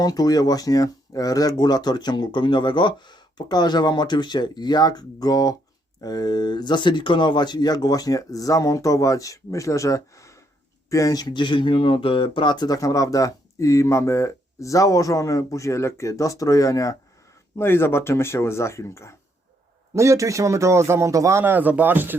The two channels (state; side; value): normal; both; correlation 0.73